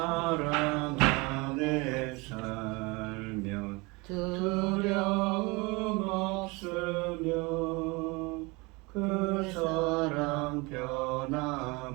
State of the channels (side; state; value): left; quieter; 26.2 dB